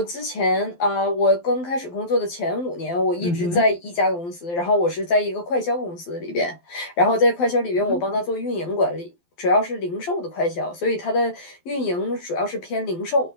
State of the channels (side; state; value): right; late; 12 ms